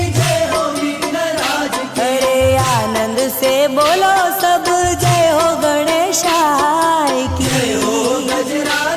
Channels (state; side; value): identical; both; correlation 1.00